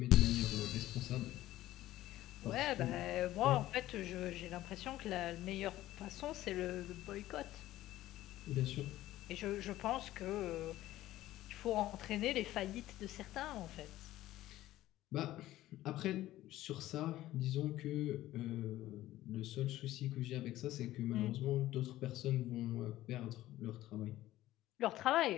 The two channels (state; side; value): quieter; right; 15.1 dB